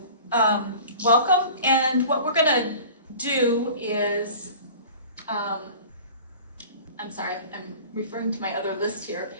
welcome, and what we're gonna do is, I'm sorry, I'm referring to my other list here,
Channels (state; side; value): inverted; both; correlation -0.42